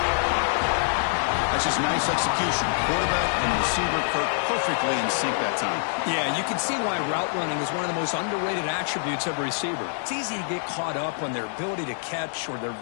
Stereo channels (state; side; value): silent; right; digital silence